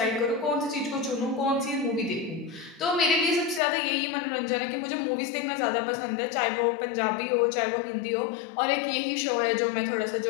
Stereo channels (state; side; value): drops out; right; at 3.6 s